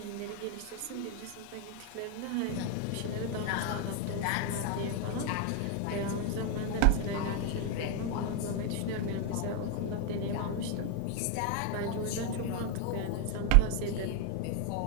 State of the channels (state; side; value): different; both; correlation 0.01